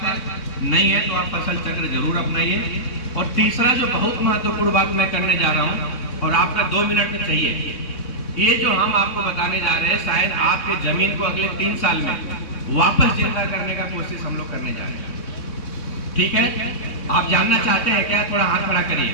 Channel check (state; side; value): late; right; 3.6 ms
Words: है, नहीं है तो आप फसल चक्र जरूर अपनाइए। और तीसरा जो बहुत महत्वपूर्ण बात मैं करने जा रहा हूँ और आपका 2 मिनट में चाहिए, ये जो हम आपको बताने जा रहे हैं शायद आपके जमीन को अगले 3 साल में वापस जिंदा करने का कोशिश हम लोग करने जा रहे हैं। ठीक है, आप जानना चाहते हैं क्या? थोड़ा हाथ खड़ा करिए।